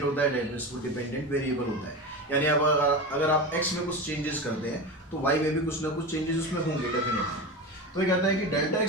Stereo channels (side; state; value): both; normal; correlation 0.24